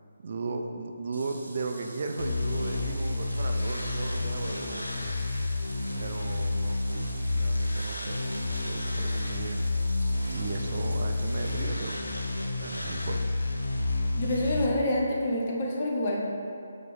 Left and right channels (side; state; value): both; inverted; correlation -0.86